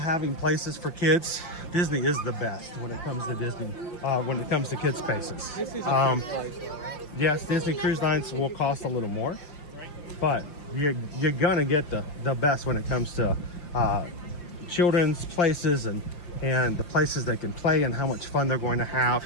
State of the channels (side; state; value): right; late; 5.7 ms